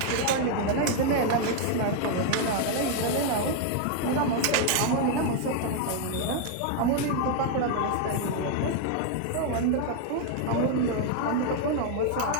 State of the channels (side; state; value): both; different; correlation 0.00